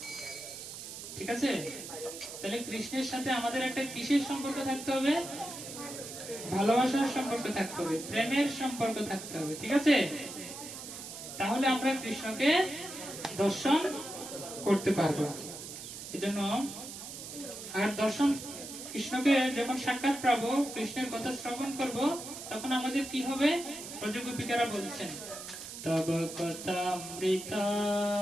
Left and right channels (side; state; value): right; noise; hiss, 10 dB below the sound